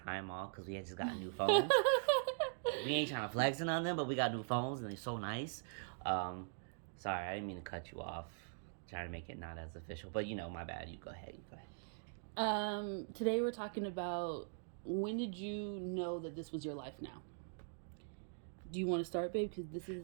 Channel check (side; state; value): left; silent; digital silence